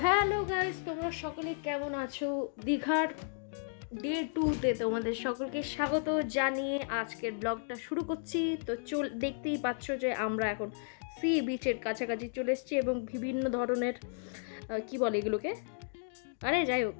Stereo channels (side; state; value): right; silent; digital silence